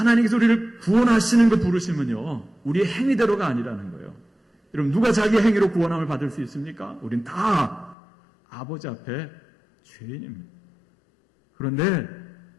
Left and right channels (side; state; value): right; drops out; at 8.0 s